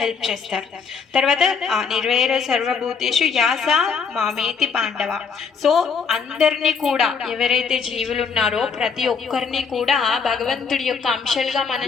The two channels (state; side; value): quieter; right; 5.7 dB